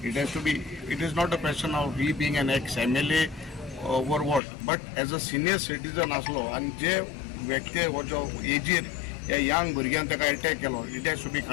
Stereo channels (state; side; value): drops out; right; at 4.4 s